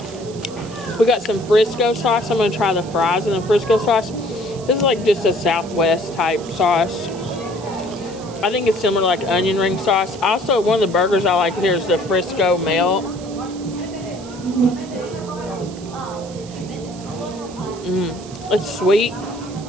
We got some Frisco sauce. I'm going to try the fries in the Frisco sauce. This is like just a Southwest type sauce. I think it's similar to like onion ring sauce. Also, one of the burgers I like here is the Frisco melt. It's sweet.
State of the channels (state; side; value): noise; right; hiss, 19 dB below the sound